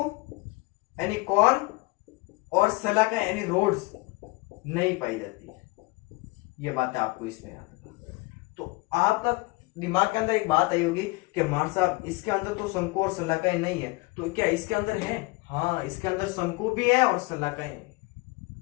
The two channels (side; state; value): right; quieter; 24.3 dB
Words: यानी कॉन और सलाका यानी रोड्स नहीं पाई जाती है। ये बात है आपको इसमें याद रखना। तो आपका दिमाग के अंदर एक बात आई होगी कि मार साहब इसके अंदर तो शंकु और सलाका ही नहीं है, तो क्या इसके अंदर है? हाँ, इसके अंदर शंकु भी है और सलाका ही नहीं।